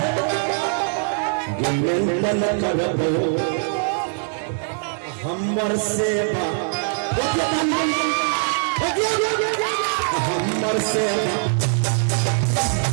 गिनन करबो हमर सेवा हमर सेवा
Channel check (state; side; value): silent; left; digital silence